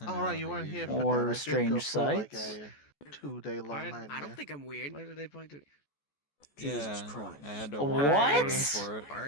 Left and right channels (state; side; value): late; right; 14 ms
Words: All right, you weren't here for Or that. I did strange go through like sights? a 2-day long nightmare. I don't think I'm weird. Why did they point to? Jesus Christ! I had to What? walk for it.